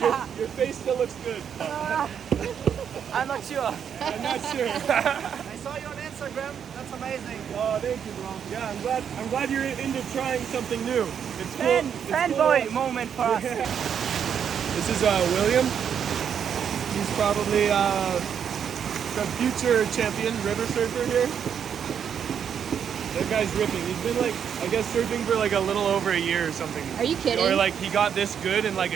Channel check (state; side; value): quieter; left; 8.0 dB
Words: Your face still looks good. I'm not sure. I'm not sure. I saw you on Instagram. That's amazing. Oh, thank you, bro. Yeah, I'm glad you're into trying something new. It's cool. It's Fanboy cool. moment for us. This is William. He's probably the future champion river surfer here. That guy's ripping. He's been like, I guess, surfing for like a little over a year or something. Are you kidding? Or like he got this good in like